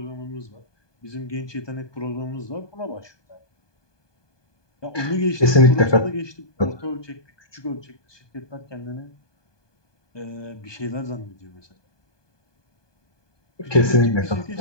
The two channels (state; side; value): late; right; 1.2 ms